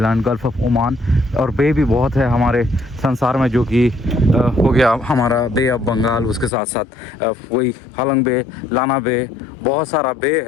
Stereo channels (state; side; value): drops out; right; at 6.5 s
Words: gulf of Oman, और बे भी बहुत है हमारे संसार में, जो कि हो गया हमारा बे ऑफ बंगाल, उसके साथ साथ वही हालोंग बे, लाना बे, बहुत सारा बे